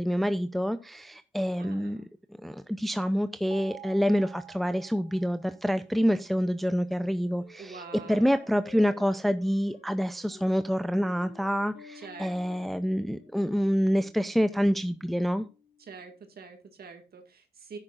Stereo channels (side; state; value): both; normal; correlation 0.98